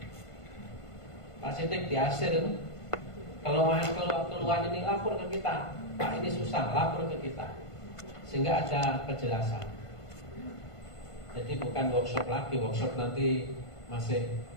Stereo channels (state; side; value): late; right; 1.5 ms